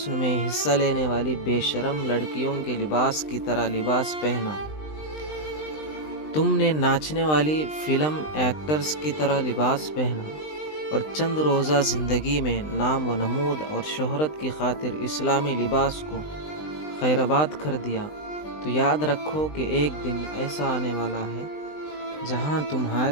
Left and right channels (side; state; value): right; late; 20 ms